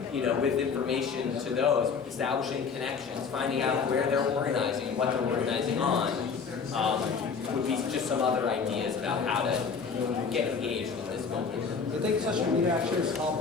with information to those, establishing connections, finding out where they're organizing, what they're organizing on, would be just some other ideas about how to get engaged in this moment. Do you think social media actually is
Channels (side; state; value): right; quieter; 5.6 dB